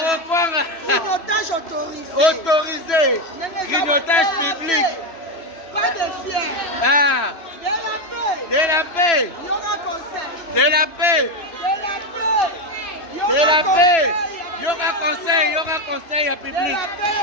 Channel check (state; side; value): late; right; 3.0 ms